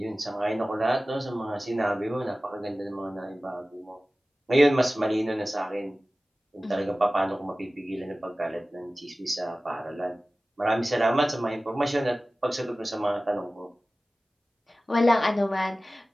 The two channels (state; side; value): normal; both; correlation 0.97